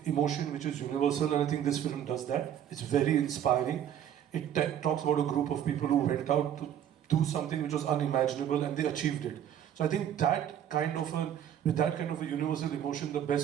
emotion which is universal, and I think this film does that. It's very inspiring. It talks about a group of people who went out to do something which was unimaginable, and they achieved it. So I think with that kind of a universal emotion, the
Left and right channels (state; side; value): quieter; left; 10.0 dB